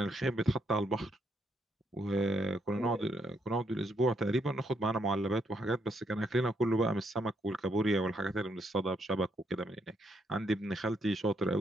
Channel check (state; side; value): normal; both; correlation 0.75